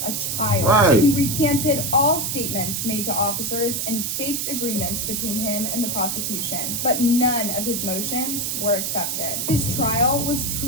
a child. Right. He recanted all statements made to officers and faked agreements between him and the prosecution, but none of his motions were accepted. His trial was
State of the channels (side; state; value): right; noise; hiss, 1 dB below the sound